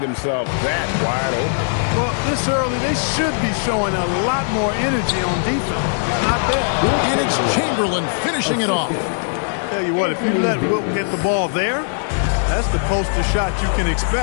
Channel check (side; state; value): right; silent; digital silence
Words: himself that wide open. Well, this early, they should be showing a lot more energy on defense. Not there. And it's Chamberlain finishing it off. Tell you what, if you let Wilt get the ball there, that's the poster shot you can